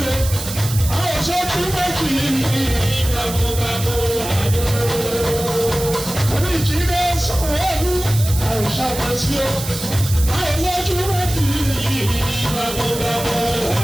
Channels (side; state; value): right; noise; hiss, 8 dB below the sound